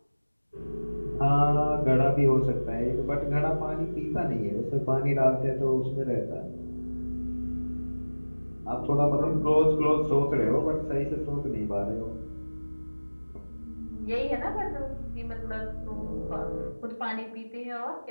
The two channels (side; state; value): both; inverted; correlation -1.00